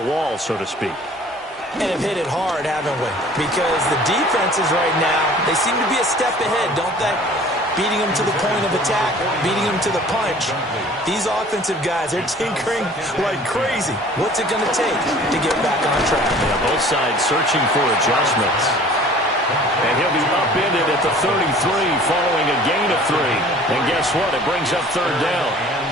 wall, so to speak. And have hit it hard, haven't we? Because the defenses right now, they seem to be a step ahead, don't they? Beating them to the point of attack, beating them to the punch. These offensive guys, they're tinkering like crazy. What's it going to take to get back on track? Yeah, both sides searching for adjustments. And he'll be upended at the 33 following a gain of 3. And guess what? It brings up 3rd down.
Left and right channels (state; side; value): normal; both; correlation 0.49